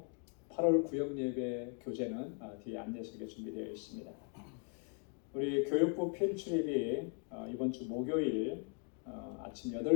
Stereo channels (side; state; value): right; quieter; 39.6 dB